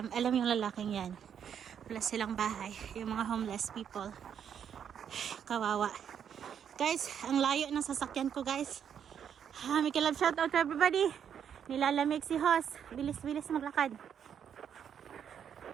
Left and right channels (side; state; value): left; quieter; 8.3 dB